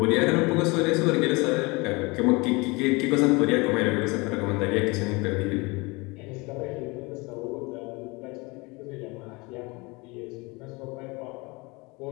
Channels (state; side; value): quieter; right; 26.0 dB